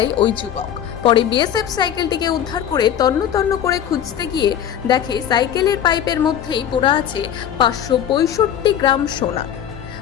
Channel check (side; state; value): right; quieter; 9.8 dB